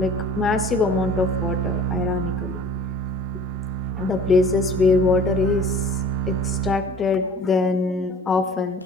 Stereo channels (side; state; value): both; normal; correlation 0.46